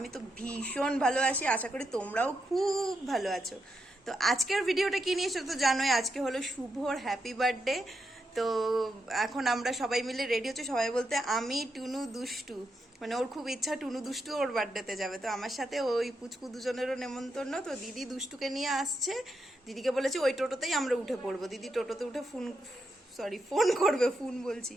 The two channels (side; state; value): both; normal; correlation 0.83